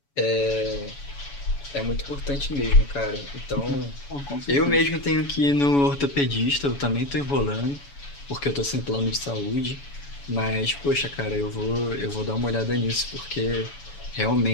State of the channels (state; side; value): late; right; 7.1 ms